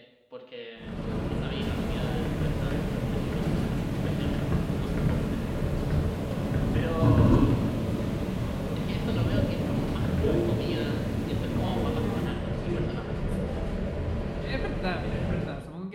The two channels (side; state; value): both; identical; correlation 1.00